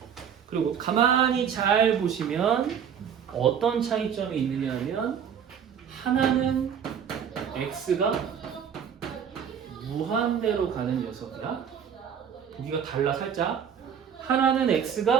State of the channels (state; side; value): quieter; left; 8.0 dB